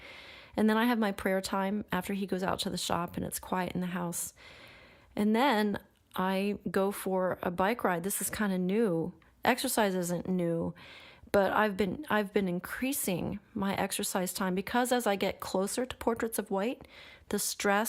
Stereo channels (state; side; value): identical; both; correlation 1.00